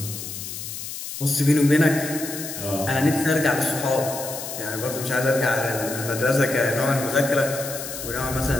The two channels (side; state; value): left; noise; hiss, 8 dB below the sound